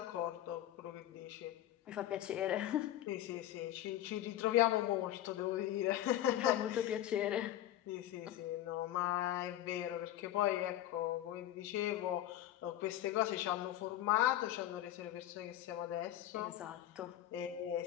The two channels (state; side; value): quieter; right; 13.1 dB